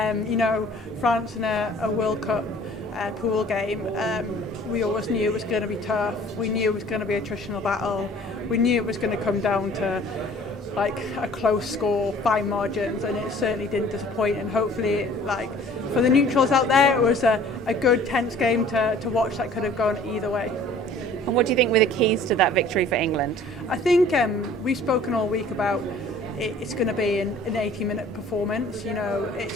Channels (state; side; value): normal; both; correlation 0.51